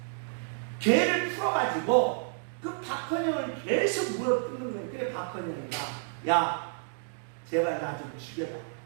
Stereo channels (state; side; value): silent; left; digital silence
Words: 개를 풀어가지고 그 박헌영을 계속 물어뜯는 거예요. 그래 박헌영이가 야 제발 나 좀 죽여라.